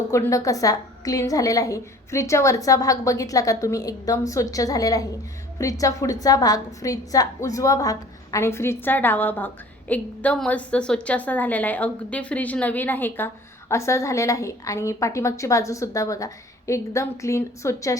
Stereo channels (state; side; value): normal; both; correlation 0.49